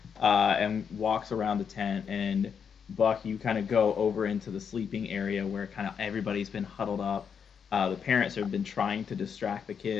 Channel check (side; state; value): right; quieter; 7.0 dB